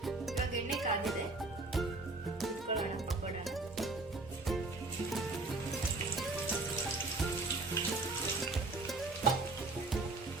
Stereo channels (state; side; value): quieter; left; 3.3 dB